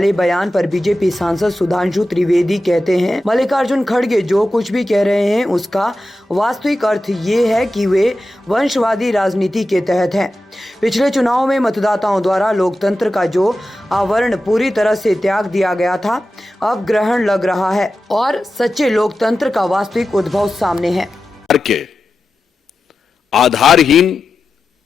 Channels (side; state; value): both; normal; correlation 0.92